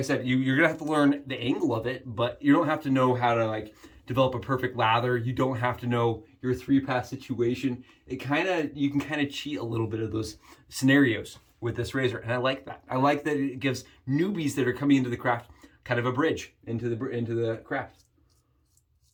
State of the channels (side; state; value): both; identical; correlation 1.00